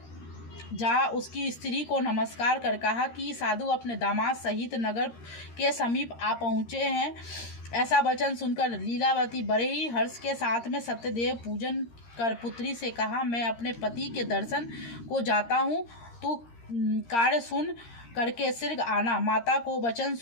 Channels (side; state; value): right; late; 13 ms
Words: जा उसकी स्त्री को नमस्कार कर कहा कि साधु अपने दामाद सहित नगर के समीप आ पहुँचे हैं। ऐसा वचन सुनकर लीलावती बड़े ही हर्ष के साथ में सत्यदेव पूजन कर पुत्री से कहा, मैं अपने पति के दर्शन को जाता हूँ, तू कार्य सुन करके शीघ्र आना। माता को वचन